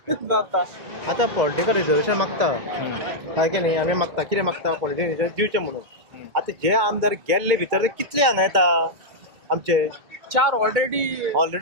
जाता. आतां पॉलिटिकल रिजर्वेशन मागता सारकें न्ही. आमी मागता कितें मागता? पॉलिटिकल रिजर्वेशन दिवचें म्हणून. आतां जे आमदार गेल्ले भितर ते कितले हांगा येता आमचे? 4 ऑलरेडी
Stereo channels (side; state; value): left; late; 2.1 ms